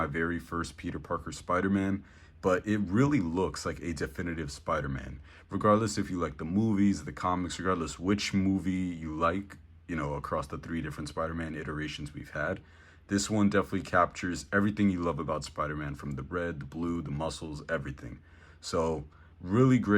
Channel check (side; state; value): both; identical; correlation 1.00